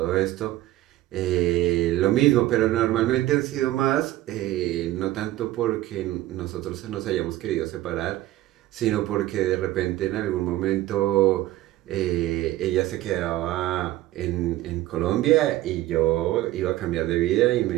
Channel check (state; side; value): quieter; left; 15.7 dB